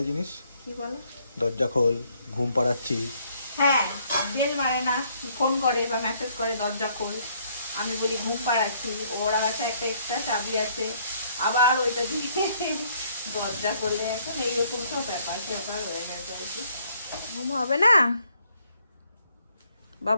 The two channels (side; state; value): both; inverted; correlation -0.66